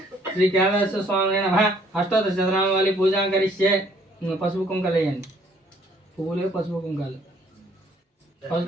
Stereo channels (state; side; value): normal; both; correlation 0.62